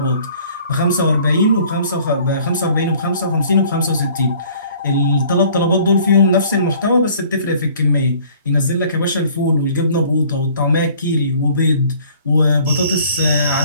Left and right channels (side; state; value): both; inverted; correlation -0.54